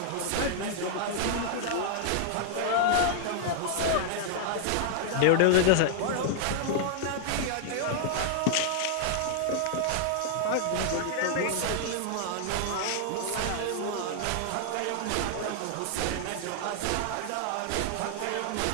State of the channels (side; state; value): both; different; correlation -0.01